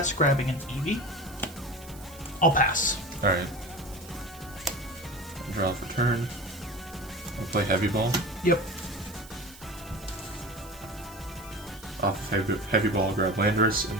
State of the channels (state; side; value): noise; right; hiss, 19 dB below the sound